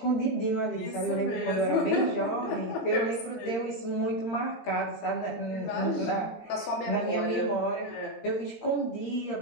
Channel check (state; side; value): late; right; 18 ms